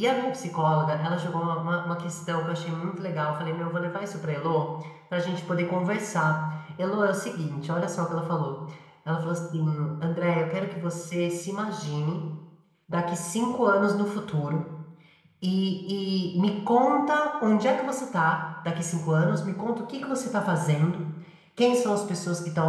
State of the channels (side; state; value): both; identical; correlation 1.00